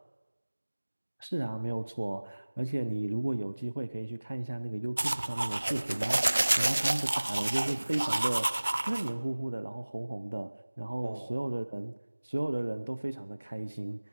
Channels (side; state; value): both; inverted; correlation -1.00